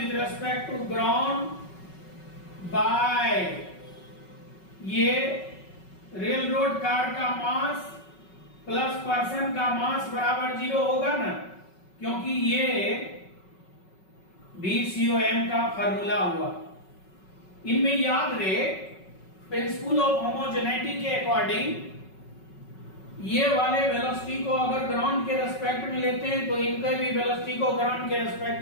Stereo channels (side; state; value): right; late; 5.4 ms